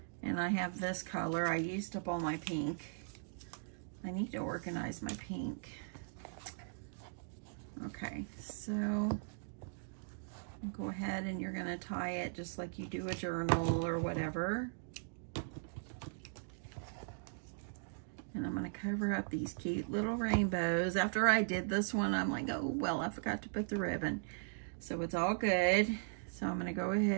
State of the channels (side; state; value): left; silent; digital silence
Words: and I have this color. I used up all my pink. I need to organize my pink. Okay, so go ahead and you're going to tie it just like you do a journal or whatever. And I'm going to cover up these cute little rainbows. After I did this one, I'm like, oh, well, I forgot to put the ribbon. So it's all good. So I'm going to go